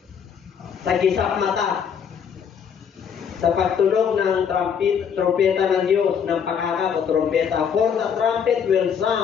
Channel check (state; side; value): quieter; right; 7.4 dB